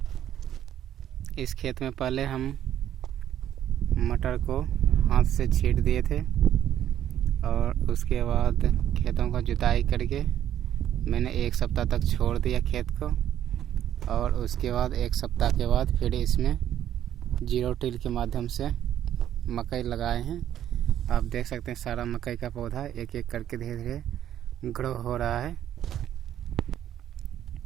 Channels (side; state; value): left; quieter; 11.0 dB